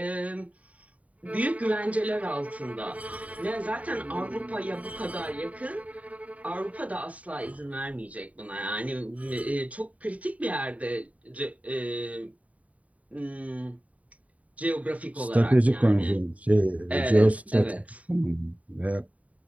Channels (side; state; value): left; late; 0.069 ms